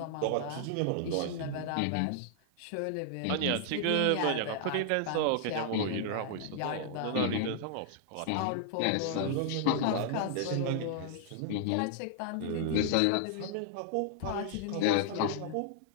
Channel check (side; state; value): both; different; correlation -0.01